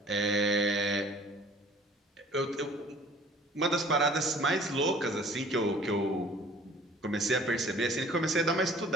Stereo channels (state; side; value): normal; both; correlation 0.51